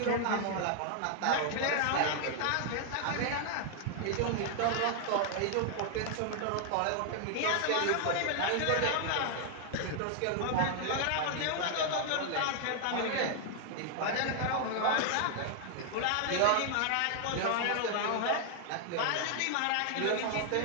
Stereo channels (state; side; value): different; both; correlation 0.00